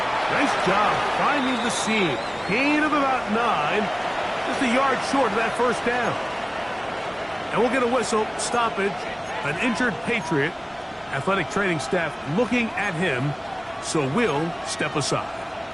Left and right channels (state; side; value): identical; both; correlation 1.00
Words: Nice job finding the seam. Gain of about 9. Just a yard short of that first down. And we'll get a whistle. Stoppage. An injured Patriot. Athletic training staff looking at him. So we'll step aside.